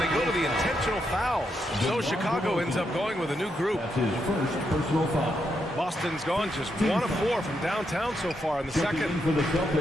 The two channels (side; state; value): both; normal; correlation 0.81